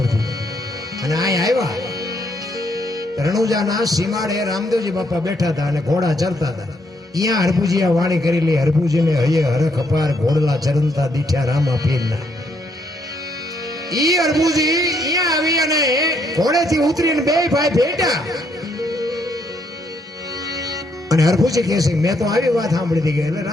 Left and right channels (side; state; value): both; normal; correlation 0.73